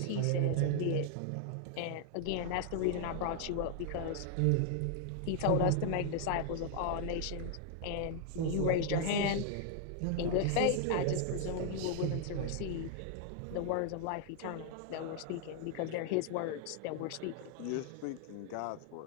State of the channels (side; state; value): both; different; correlation 0.00